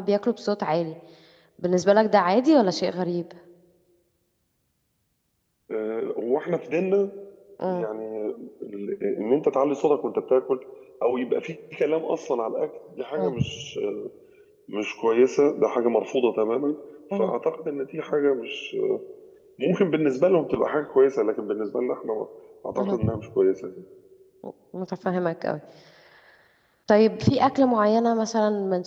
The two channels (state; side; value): identical; both; correlation 1.00